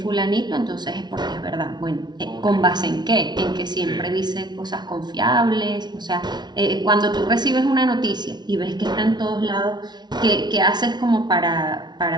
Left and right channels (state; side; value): late; left; 0.20 ms